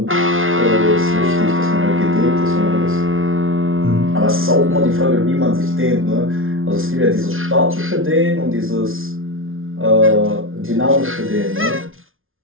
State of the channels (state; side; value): late; left; 0.60 ms